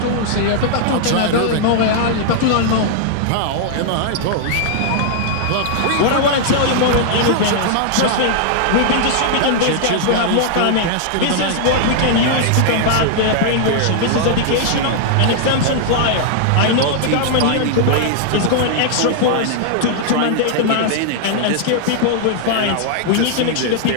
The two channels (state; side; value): different; both; correlation -0.01